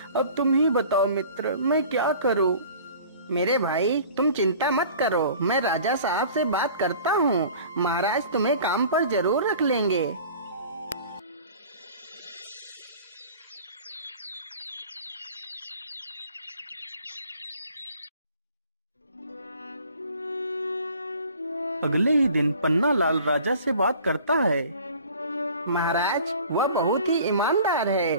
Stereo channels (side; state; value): both; inverted; correlation -0.46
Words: अब तुम ही बताओ मित्र, मैं क्या करूं? मेरे भाई, तुम चिंता मत करो, मैं राजा साहब से बात करता हूँ। महाराज तुम्हें काम पर जरूर रख लेंगे। अगले ही दिन पन्नालाल राजा से बात करता है। महाराज, वह बहुत ही ईमानदार है,